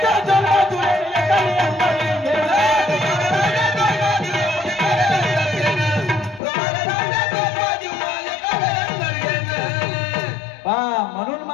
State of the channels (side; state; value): right; drops out; at 6.4 s